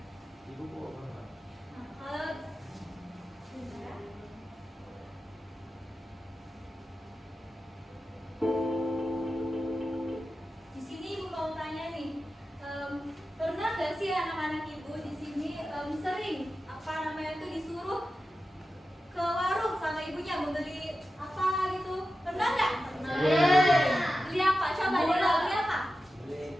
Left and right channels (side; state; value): both; normal; correlation 0.92